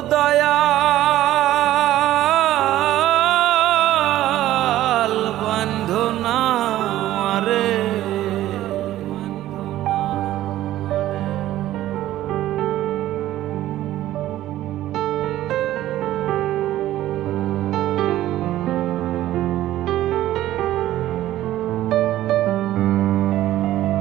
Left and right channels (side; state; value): left; quieter; 14.1 dB